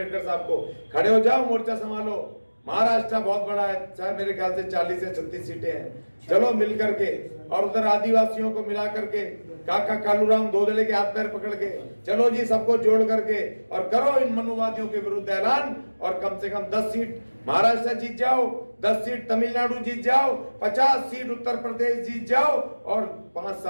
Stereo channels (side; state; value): both; inverted; correlation -1.00